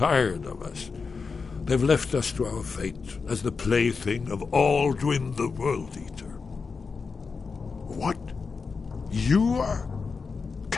of us. They've left us to our fate as the plaything of Alduin the World Eater. What? You are?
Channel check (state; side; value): quieter; right; 4.9 dB